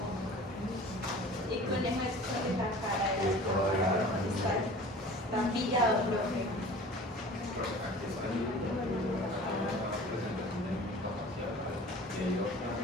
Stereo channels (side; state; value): both; normal; correlation 0.43